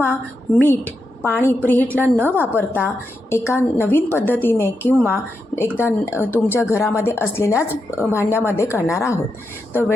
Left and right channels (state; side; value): normal; both; correlation 0.86